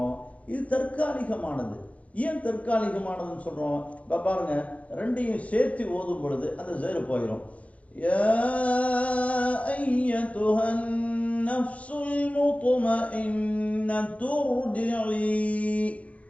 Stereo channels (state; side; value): late; right; 0.066 ms